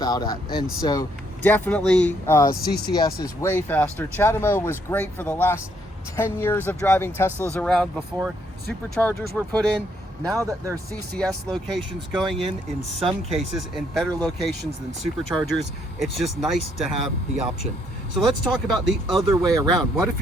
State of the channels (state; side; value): normal; both; correlation 0.70